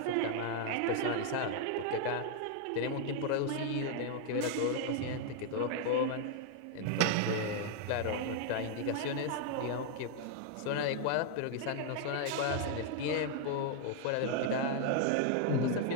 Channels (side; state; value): both; different; correlation 0.00